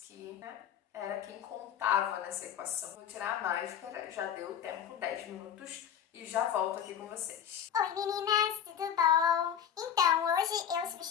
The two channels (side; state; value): right; quieter; 8.9 dB